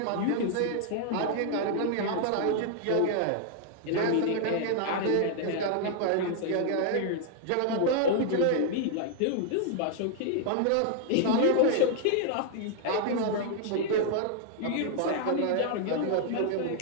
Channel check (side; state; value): both; different; correlation 0.00